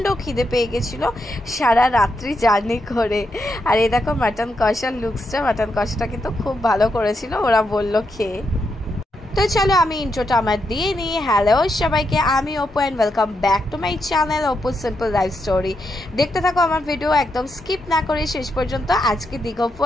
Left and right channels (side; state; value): both; normal; correlation 0.82